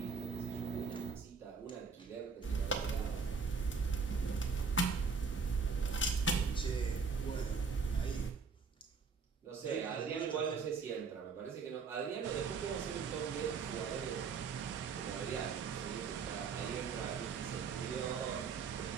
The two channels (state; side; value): quieter; left; 5.3 dB